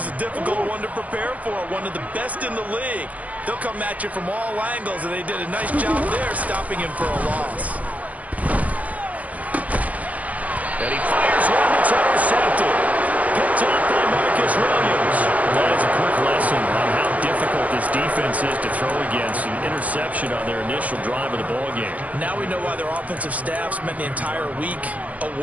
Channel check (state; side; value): late; left; 0.071 ms